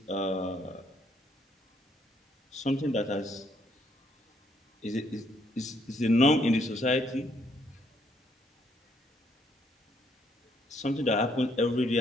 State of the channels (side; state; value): both; normal; correlation 0.70